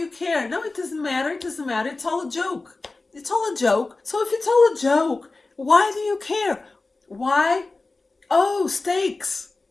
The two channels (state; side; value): quieter; right; 3.4 dB